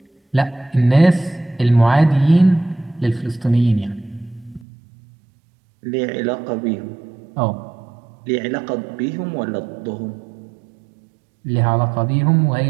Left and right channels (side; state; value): left; drops out; at 4.7 s